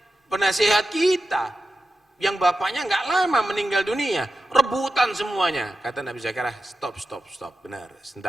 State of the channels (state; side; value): normal; both; correlation 0.91